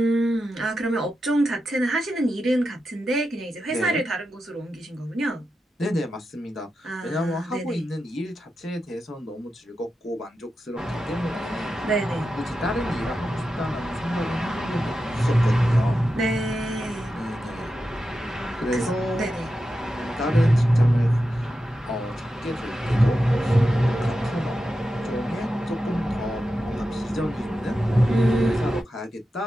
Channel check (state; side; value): normal; both; correlation 0.90